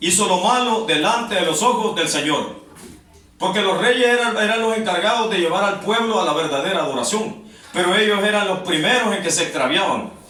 hizo lo malo delante de los ojos del Señor. Porque los reyes eran los encargados de llevar al pueblo a la verdadera adoración. Pero ellos eran los primeros en que se extraviaban.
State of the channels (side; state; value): both; identical; correlation 1.00